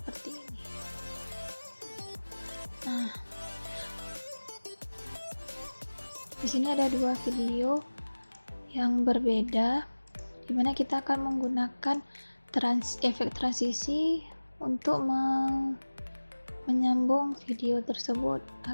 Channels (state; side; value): inverted; both; correlation -1.00